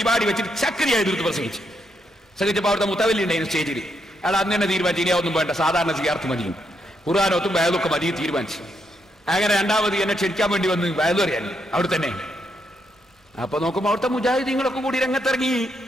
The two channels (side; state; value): both; normal; correlation 0.79